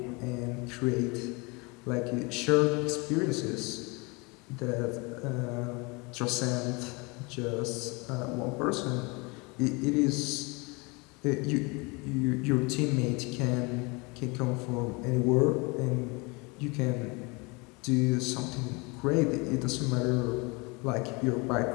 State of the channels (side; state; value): right; quieter; 28.1 dB